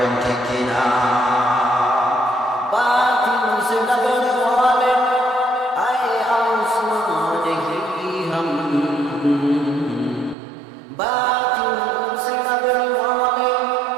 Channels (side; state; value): left; drops out; at 10.4 s